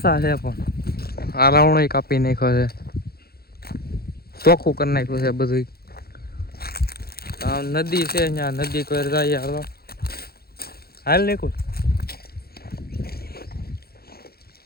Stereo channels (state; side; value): late; right; 0.45 ms